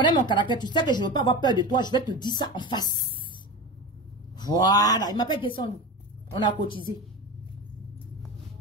mon caractère, tu sais que je ne veux pas avoir peur de toi, je vais te dire ça en face. Voilà, il m'appelle Descendou. On a cotisé.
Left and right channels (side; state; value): both; normal; correlation 0.26